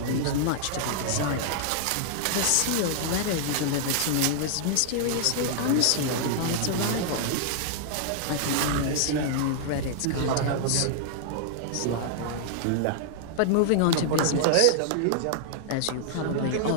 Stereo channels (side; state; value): both; different; correlation -0.01